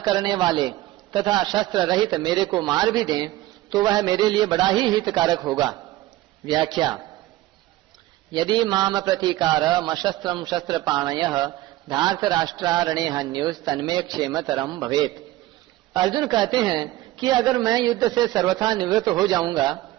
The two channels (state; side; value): quieter; left; 16.5 dB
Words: वाले तथा शस्त्र रहित मेरे को मार भी दें तो वह मेरे लिए बड़ा ही हितकारक होगा। व्याख्या। यदि माम प्रतीकार मशस्त्रम शस्त्रपाणयः धार्तराष्ट्रारणे हन्योस् तन्मे क्षेमतरम भवेत्। अर्जुन कहते हैं कि अगर मैं युद्ध से सर्वथा निवृत्त हो जाऊंगा